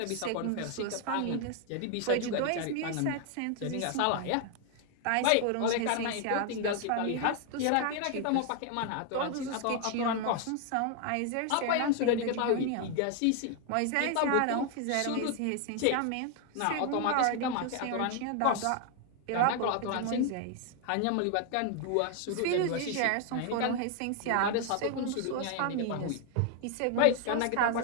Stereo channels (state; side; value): different; both; correlation 0.00